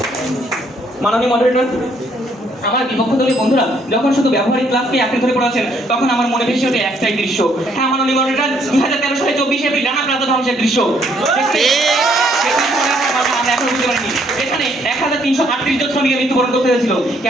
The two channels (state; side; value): normal; both; correlation 0.68